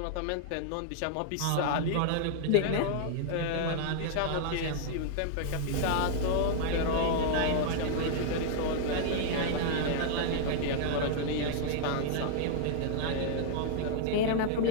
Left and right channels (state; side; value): different; both; correlation -0.01